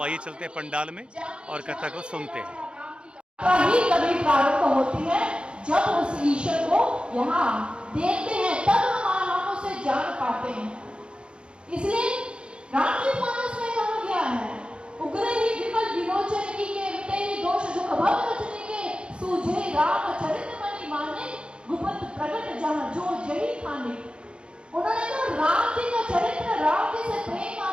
आइए चलते हैं पंडाल में और कथा को सुनते हैं। कभी प्रारंभ होती है जब उस ईश्वर को यहाँ देखते हैं, तब हम उसे जान पाते हैं। इसलिए रामचरित मानस में कहा गया है, उग्र ही विमल विलोचन की के मिटे ही दोष दुख भव रचने के सूझे राम चरित मणि माने गुप्त प्रगट जहाँ जो जही खाने। उन्होंने कहा राम जी का चरित्र, राम जी से प्रेम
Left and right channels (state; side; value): late; left; 0.056 ms